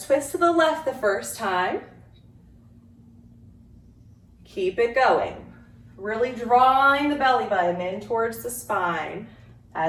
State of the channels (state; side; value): identical; both; correlation 1.00